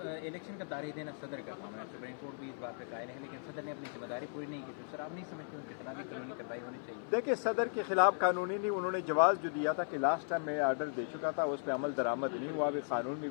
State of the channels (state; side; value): silent; right; 53 dB below the other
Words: इलेक्शन का तारीख देना सदर का काम है, सुप्रीम कोर्ट भी इस बात पे कायल है, लेकिन सदर ने अपनी जिम्मेदारी पूरी नहीं की। तो सर, आप नहीं समझते उनके खिलाफ भी कानूनी कार्रवाई होनी चाहिए? देखिए, सदर के खिलाफ कानूनी नहीं, उन्होंने जवाब जो दिया था कि लास्ट टाइम मैं आर्डर दे चुका था, उस पर अमल दरामद नहीं हुआ। अभी कानून में